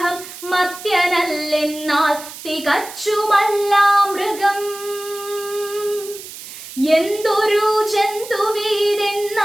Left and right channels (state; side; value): noise; right; hiss, 13 dB below the sound